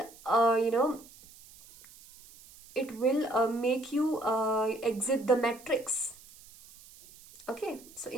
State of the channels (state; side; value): noise; right; hiss, 22 dB below the sound